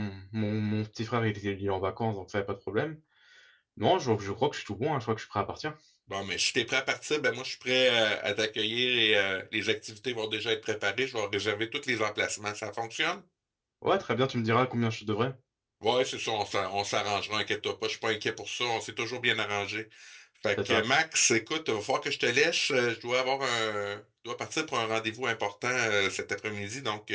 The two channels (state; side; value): identical; both; correlation 1.00